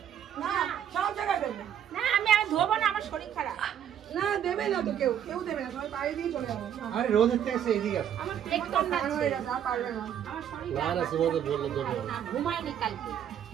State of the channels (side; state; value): left; quieter; 9.6 dB